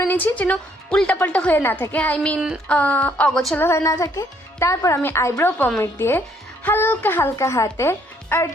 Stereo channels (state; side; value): normal; both; correlation 0.67